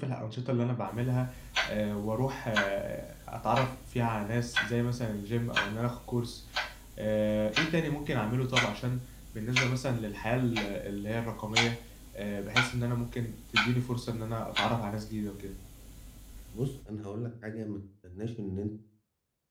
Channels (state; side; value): identical; both; correlation 1.00